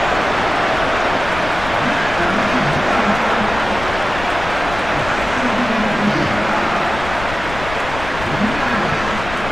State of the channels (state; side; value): noise; left; rumble, 11 dB below the sound